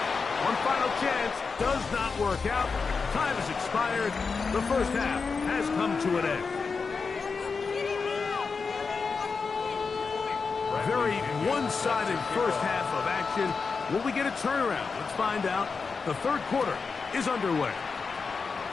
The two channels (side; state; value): right; quieter; 4.9 dB